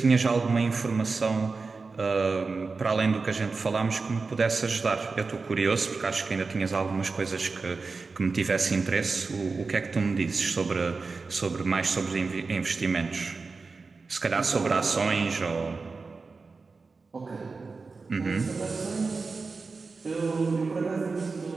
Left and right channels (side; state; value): left; quieter; 4.3 dB